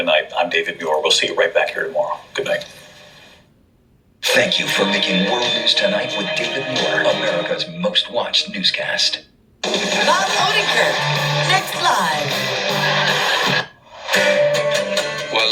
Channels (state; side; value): identical; both; correlation 1.00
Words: I'm David Muir. We'll see you right back here tomorrow. Good night. Thank you for making World News Tonight with David Moore, America's most watched newscast. Bob Odenkirk, next live. While